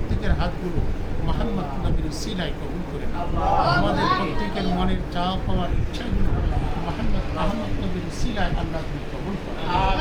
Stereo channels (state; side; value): identical; both; correlation 1.00